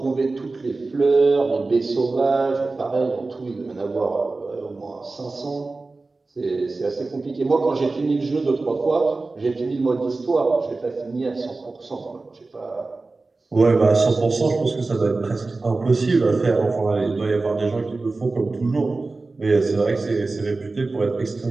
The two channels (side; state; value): left; quieter; 3.5 dB